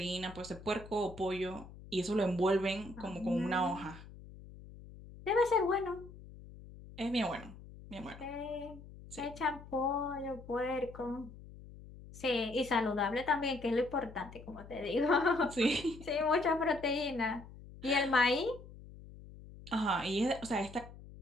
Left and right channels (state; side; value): noise; left; hum, 17 dB below the sound